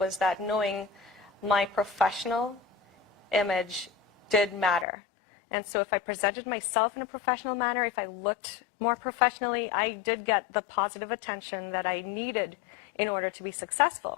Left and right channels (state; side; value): drops out; right; at 4.9 s